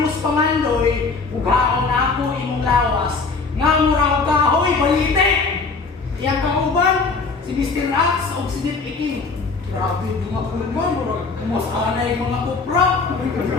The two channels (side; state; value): right; quieter; 4.3 dB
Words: Mus Pangandoy. Ugaon na ako imong lawas. Nga murang kahoy, balite. Iyang kauban, si Mr. Axe o si Nip Iking. Grabe mga kulman, murang kumusanay mga kupra.